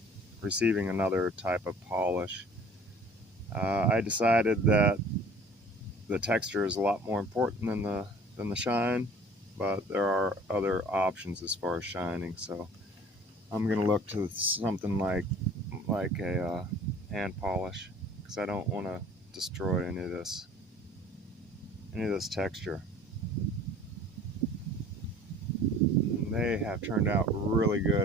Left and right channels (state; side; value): normal; both; correlation 0.48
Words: receiving another type of polish. I decided that the texture is a lot more important than the shine, but there are other options as far as shining. So I'm going to look to something like a hand polish, because I don't want to destroy any of this texture. And they have turned out really